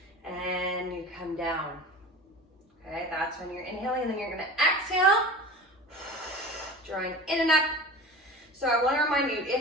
and you come down. Okay, that's when you're inhaling, and then you're gonna exhale, drawing in and up. So I wanna remind you,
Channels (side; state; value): both; normal; correlation 0.35